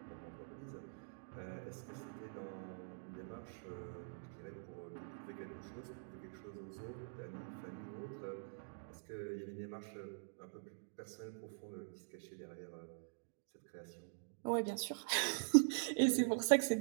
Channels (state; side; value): silent; left; digital silence